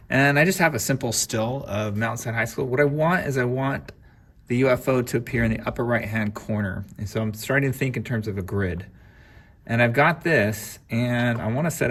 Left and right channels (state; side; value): identical; both; correlation 1.00